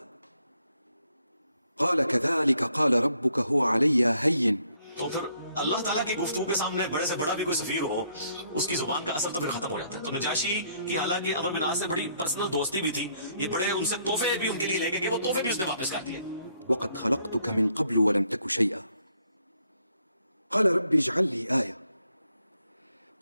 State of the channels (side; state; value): both; inverted; correlation -0.70